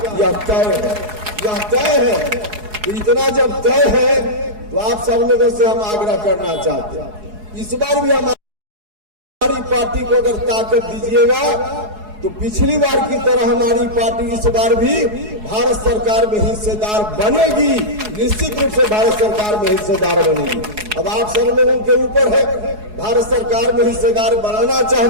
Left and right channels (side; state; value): left; late; 4.7 ms